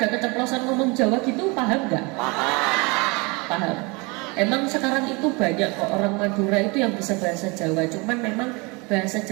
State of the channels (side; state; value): left; quieter; 27.9 dB